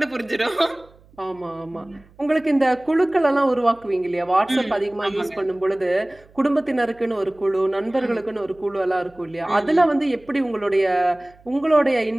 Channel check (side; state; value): right; noise; hum, 28 dB below the sound